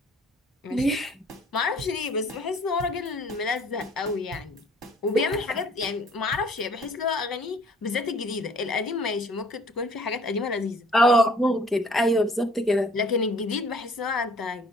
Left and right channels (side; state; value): both; normal; correlation 0.55